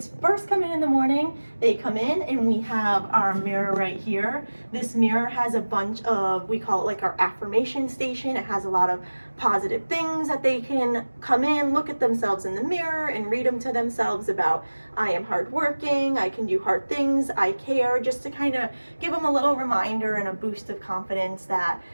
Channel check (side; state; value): both; inverted; correlation -1.00